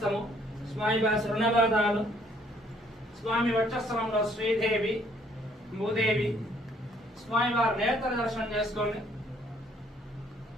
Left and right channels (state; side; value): normal; both; correlation 0.64